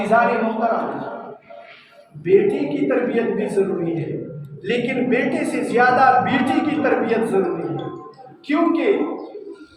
محترم، بیٹی کی تربیت بھی ضروری ہے، لیکن بیٹے سے زیادہ بیٹی کی تربیت ضروری ہے، کیونکہ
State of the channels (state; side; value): identical; both; correlation 1.00